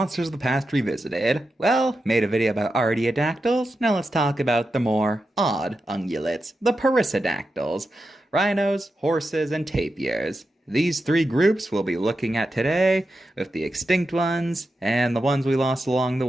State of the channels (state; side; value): normal; both; correlation 0.89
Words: of the Past Revisited. Well, made a video about artiodactyls, now let's talk about the more odd ungulates, the perissodactyls, rhinos, horses, and tapirs. These three groups we'll be looking at today, with the extinct ones, and the ones we lost along the